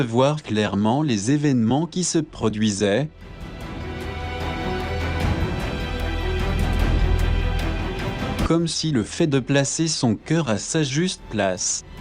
clairement les événements qui se produisaient, comme si le fait de placer son cœur à sa juste place,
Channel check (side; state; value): both; identical; correlation 1.00